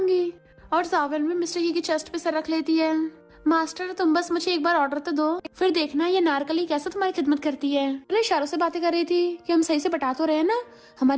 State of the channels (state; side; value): identical; both; correlation 1.00